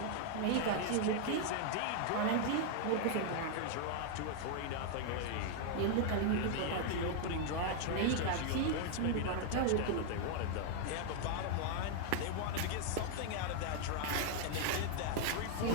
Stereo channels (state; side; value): different; both; correlation 0.00